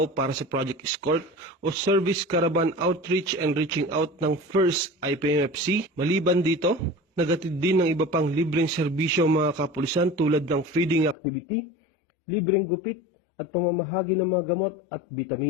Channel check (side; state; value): right; drops out; at 11.2 s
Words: para sa Project Escort o Service Caravan Outreach and Reaching Out ng First IPMFC. Maliban dito, nagatid din ng iba pang libreng serbisyo ang mga kapulisan tulad ng feeding activity, libreng gupit at pamamahagi ng mga gamot at